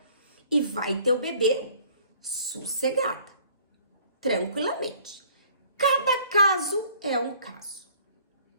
e vai ter o bebê sossegada, tranquilamente. Cada caso é um caso.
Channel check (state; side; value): inverted; both; correlation -0.55